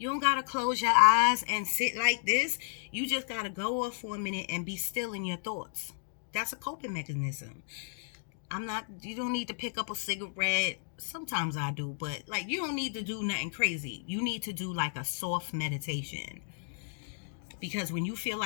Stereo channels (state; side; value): silent; right; digital silence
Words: don't gotta close your eyes and sit like this. You just gotta go off for a minute and be still in your thoughts. That's a coping mechanism. You don't need to pick up a cigarette. Sometimes I do, but like, you don't need to do nothing crazy. You need to do like a soft meditation. Because when you feel